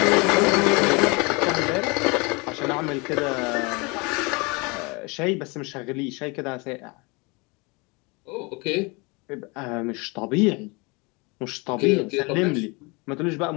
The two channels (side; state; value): right; quieter; 28.1 dB